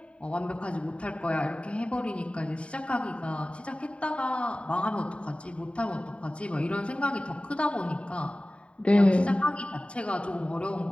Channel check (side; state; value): right; late; 0.060 ms